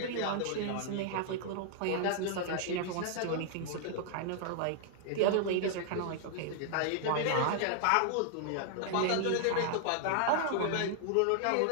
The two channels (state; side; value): different; both; correlation 0.00